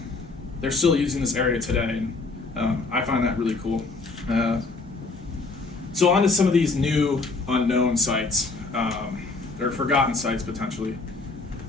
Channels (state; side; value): quieter; right; 3.7 dB